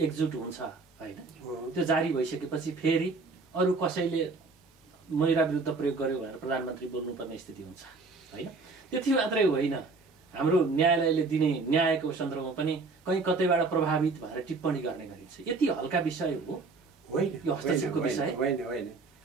एकजुट हुन्छ होइन, त्यो जारी भइसकेपछि फेरि अरू कसैले महिला विरुद्ध प्रयोग गर्यो भनेर प्रधानमन्त्री बोल्नुपर्ने स्थिति हुन्छ होइन। त्यति मात्रै होइन, हाम्रो न्यायालयले दिने न्यायको सन्दर्भमा पनि कहीँ कतैबाट प्रभावित भएर टिप्पणी गर्ने गरिन्छ। यति हल्का विषय हो होइन यो हस्तक्षेपको विषय? होइन।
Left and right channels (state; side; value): quieter; left; 3.9 dB